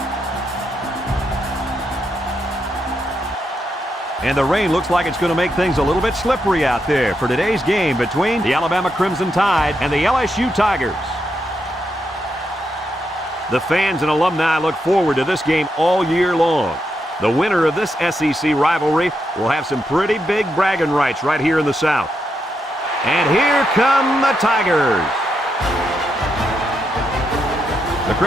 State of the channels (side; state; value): both; normal; correlation 0.82